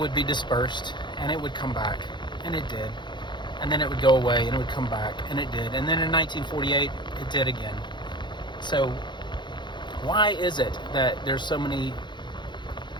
be dispersed and it would come back, and it did. And then it would go away and it would come back, and it did. And then in 1948, it did again. So why is it that there's so many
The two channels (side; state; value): right; late; 0.22 ms